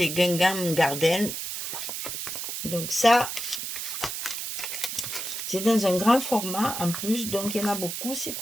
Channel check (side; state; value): right; noise; hiss, 5 dB below the sound